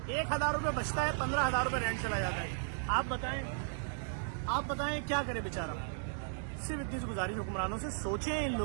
1,000 रुपये बचता है, 15,000 रुपये रेंट चला जाता है। आप बताएं क्या करे बेचारा। सिर्फ इतनी सी गुजारिश हुक्मरानों से, सोचें इन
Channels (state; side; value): silent; left; digital silence